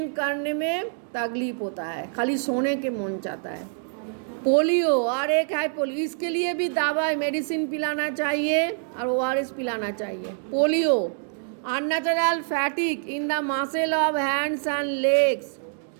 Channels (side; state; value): left; silent; digital silence